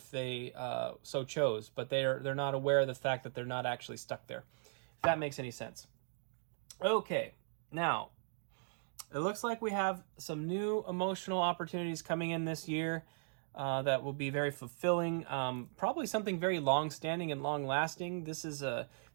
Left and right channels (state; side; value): silent; left; digital silence